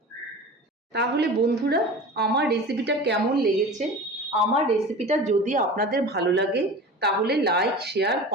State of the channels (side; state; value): both; normal; correlation 0.35